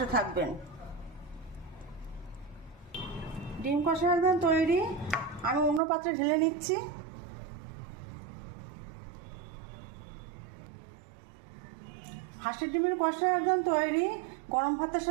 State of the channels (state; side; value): drops out; left; at 5.8 s